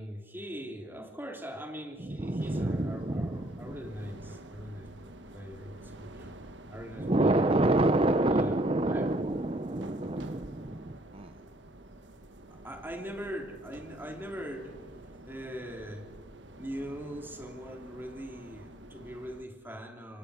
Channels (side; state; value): both; normal; correlation 0.64